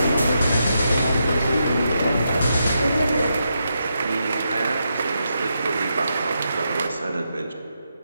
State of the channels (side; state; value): both; inverted; correlation -0.83